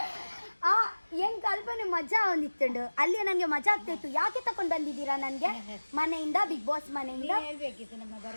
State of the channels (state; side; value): inverted; both; correlation -1.00